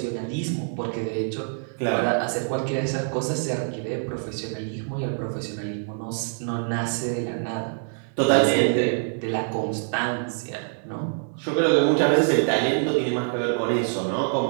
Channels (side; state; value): left; silent; digital silence